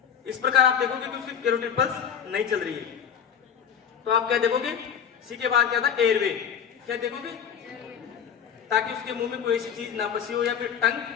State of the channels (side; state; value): right; quieter; 8.0 dB